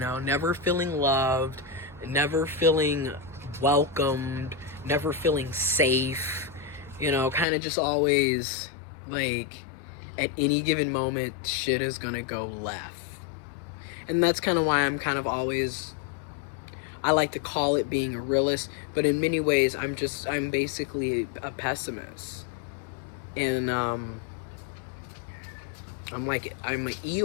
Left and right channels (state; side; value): drops out; right; at 7.5 s